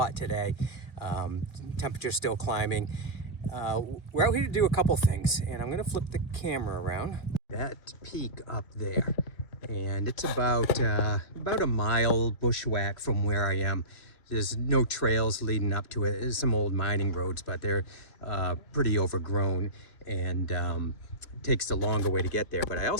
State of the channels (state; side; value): late; right; 2.6 ms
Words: today. Temperature's still climbing. We're out here to do a couple things, and I'm going to flip the camera around. That peak up there, and it's about a mile bushwhack from where I am. There's no trails leading up to it. There's some old mining roads, but they're pretty overgrown, and it takes the longer way to get there. But I